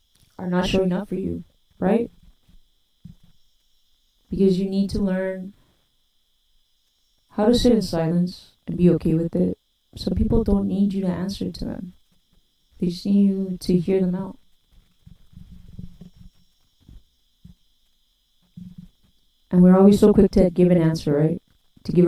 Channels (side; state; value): both; identical; correlation 1.00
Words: not showing up for you, right? Because you need to learn how to sit in silence and be okay with it. Some people don't need you to answer to them. They just need you to hear them out. And we're always so quick to give an answer, right? To